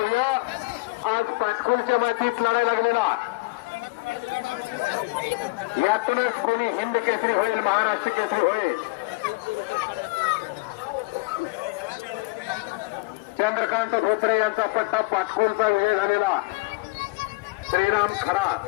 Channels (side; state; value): right; quieter; 24.4 dB